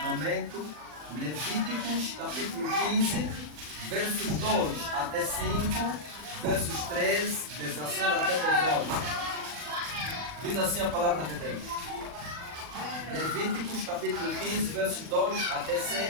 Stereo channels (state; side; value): late; left; 40 ms